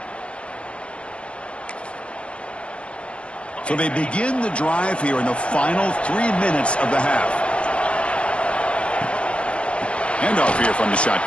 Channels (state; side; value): late; right; 0.055 ms